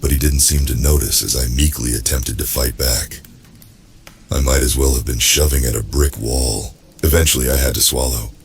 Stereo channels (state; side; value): identical; both; correlation 1.00